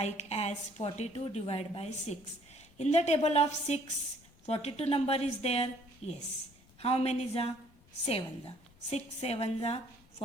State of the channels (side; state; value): left; noise; rumble, 27 dB below the sound